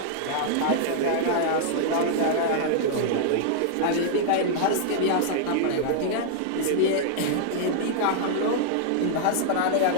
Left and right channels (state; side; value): different; both; correlation -0.01